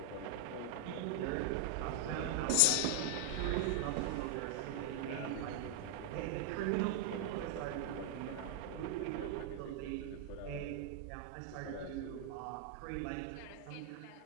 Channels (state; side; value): different; both; correlation 0.00